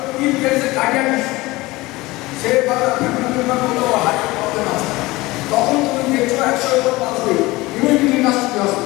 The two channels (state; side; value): quieter; right; 20.6 dB